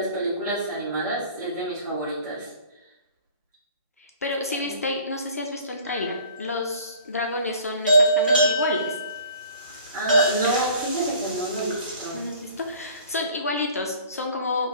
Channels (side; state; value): both; inverted; correlation -0.49